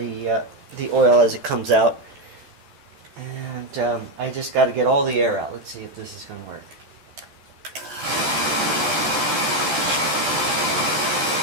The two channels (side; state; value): left; late; 14 ms